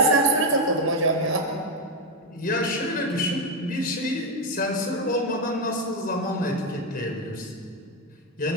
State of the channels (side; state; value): both; normal; correlation 0.06